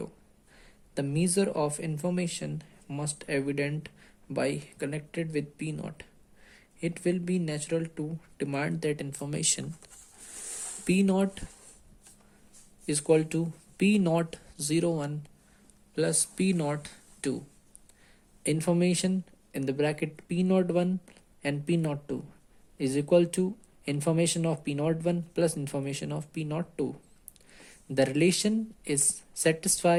The measure of information must evident by connected with P naught. It will be natural to demand that information P naught is equal to P naught 01 plus P naught 2. Information in the bracket P naught 1 and P naught 2 is equal to information of P naught 1 plus information of P naught 2. The relation is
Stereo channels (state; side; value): identical; both; correlation 1.00